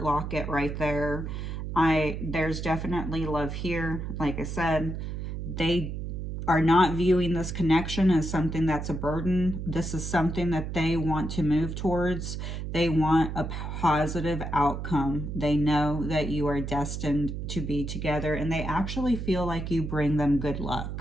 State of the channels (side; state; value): right; noise; hum, 5 dB below the sound